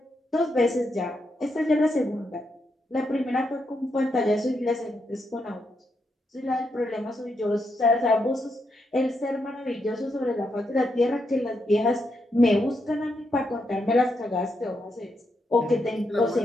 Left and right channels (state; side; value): normal; both; correlation 0.81